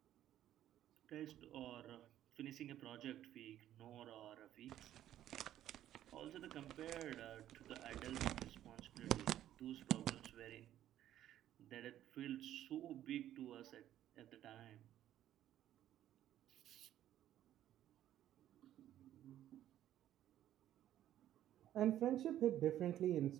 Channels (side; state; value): left; quieter; 12.1 dB